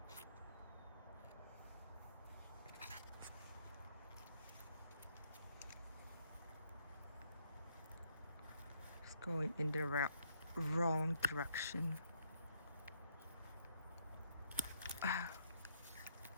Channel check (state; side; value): inverted; both; correlation -0.71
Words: It's going in the wrong direction.